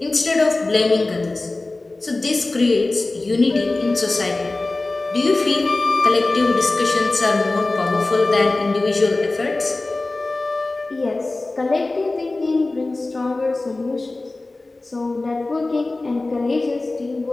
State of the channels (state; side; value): quieter; right; 3.1 dB